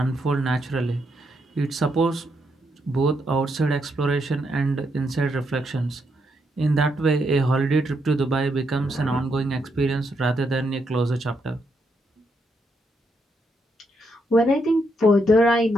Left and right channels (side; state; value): both; normal; correlation 0.78